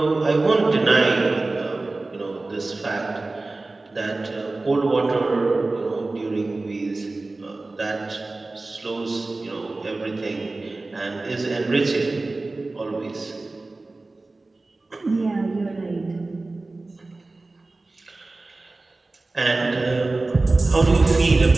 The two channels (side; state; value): left; quieter; 3.2 dB